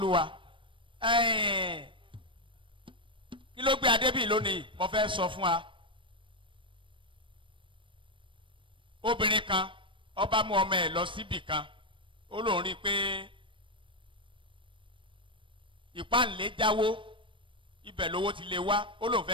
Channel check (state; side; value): late; left; 0.25 ms